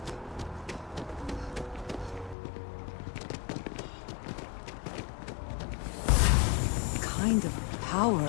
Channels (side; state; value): right; drops out; at 2.4 s